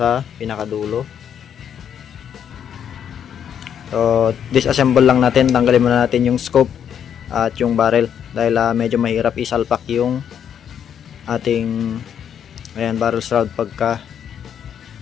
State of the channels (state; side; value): quieter; right; 8.7 dB